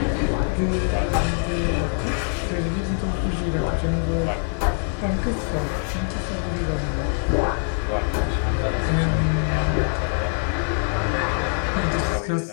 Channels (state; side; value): silent; right; 57 dB below the other